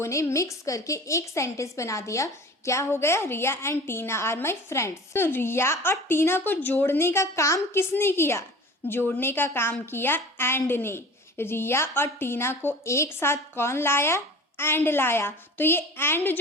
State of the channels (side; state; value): both; normal; correlation 0.40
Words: ने मिक्स करके एक सेंटेंस बना दिया। क्या हो गया? Riya and Tina are my friends. तो रिया और टीना को जोड़ने का काम किसने किया? जोड़ने का काम किया एंड ने। रिया और टीना को एक साथ कौन लाया? एंड लाया। तो ये एंड